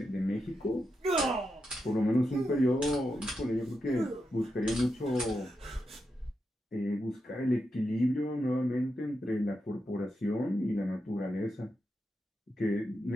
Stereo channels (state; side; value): normal; both; correlation 0.86